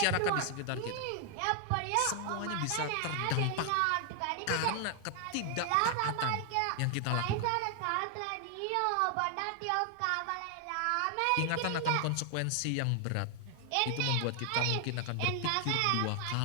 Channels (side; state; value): both; different; correlation 0.00